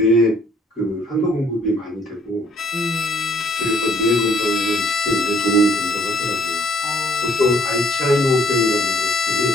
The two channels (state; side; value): normal; both; correlation 0.63